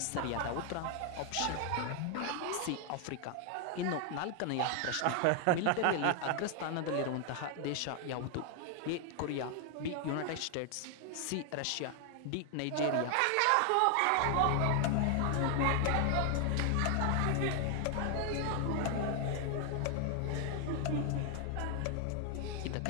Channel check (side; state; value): both; different; correlation 0.00